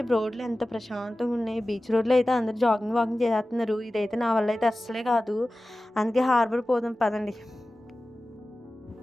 రోడ్లు ఎంత ప్రశాంతంగున్నాయి. బీచ్ రోడ్‌లో అయితే అందరూ వాకింగ్ చేసేత్తన్నారు. ఇదైతే నా వల్ల అయితే అస్సలే కాదు. అందుకే హార్బర్ పోదాం పదండి.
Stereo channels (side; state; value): both; normal; correlation 0.96